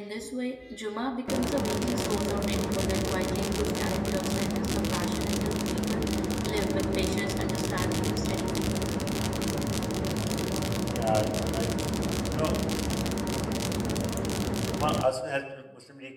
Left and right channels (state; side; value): identical; both; correlation 1.00